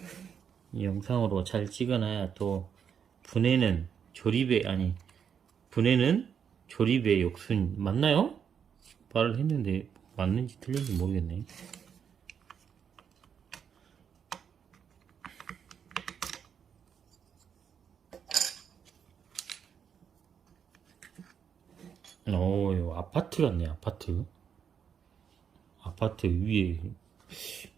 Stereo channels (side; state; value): left; quieter; 7.6 dB